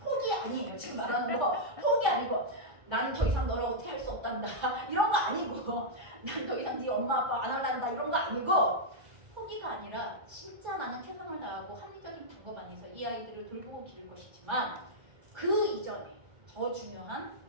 아니에요. 지금 말하는 거 포기 아니고 나는 더 이상 너랑 어떻게 할 수 없단다 이런 거 아니고 난 더 이상 네 엄마 아빠 안 할란다 이런 거 아니고 포기가 아니라 진짜 나는 최선을 다하고 합리적인 방법 안에서 이 아이들을 돌보고 기를 것이지만 그 이전에 더 중요한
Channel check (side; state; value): left; late; 1.3 ms